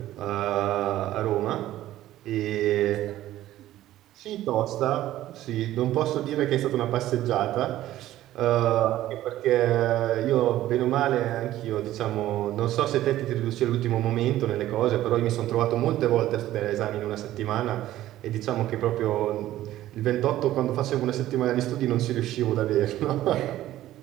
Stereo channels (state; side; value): quieter; left; 14.2 dB